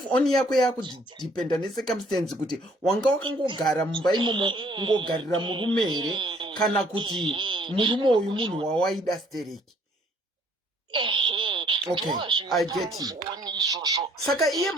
on yako yakudipenda necircumstance kuti wanga wakangogara mumba imomo ungogarira murume here kana kuti murume uyu munhu wawaida stereki. Okay, I get it. Saka iye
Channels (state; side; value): normal; both; correlation 0.60